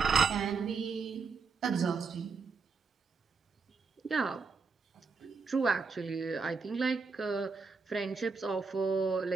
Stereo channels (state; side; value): quieter; left; 4.9 dB